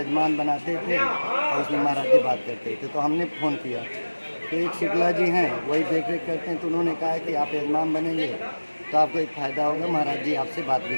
बनाते थे और उसमें महाराज जी बात करते थे। तो हमने फ़ोन किया, तो एक शुक्ला जी हैं वही देख रेख करते हैं। तो उन्होंने कहा कि आप यजमान बनेंगे तो आपको एक फ़ायदा होगा, महाराज जी आपसे बात भी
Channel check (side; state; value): both; inverted; correlation -1.00